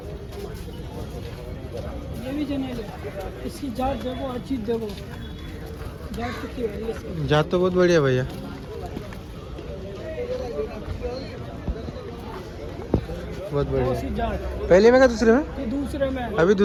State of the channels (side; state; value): both; identical; correlation 1.00